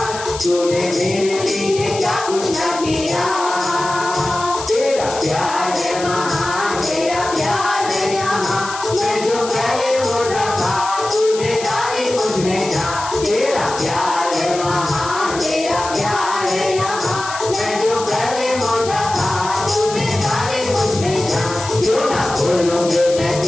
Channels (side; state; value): left; noise; hiss, 11 dB below the sound